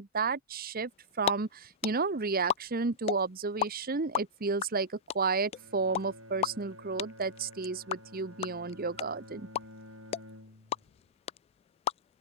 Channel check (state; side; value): normal; both; correlation -0.13